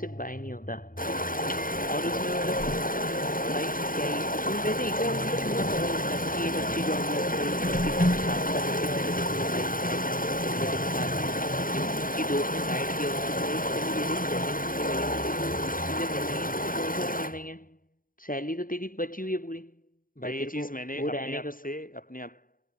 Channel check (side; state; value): right; late; 0.41 ms